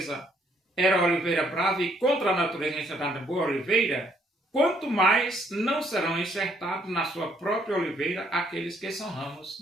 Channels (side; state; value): both; normal; correlation 0.68